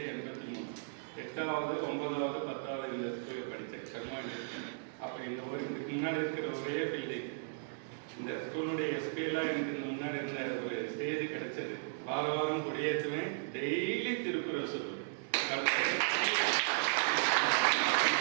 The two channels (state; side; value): silent; left; digital silence